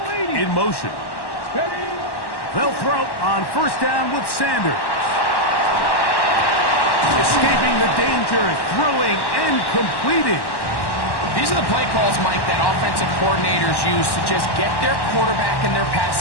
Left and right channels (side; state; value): right; late; 1.1 ms